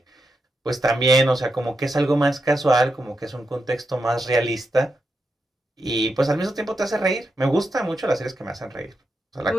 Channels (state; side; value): normal; both; correlation 0.86